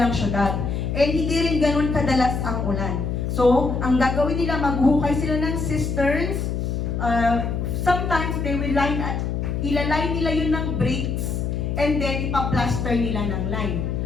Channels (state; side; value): noise; left; hum, 1 dB below the sound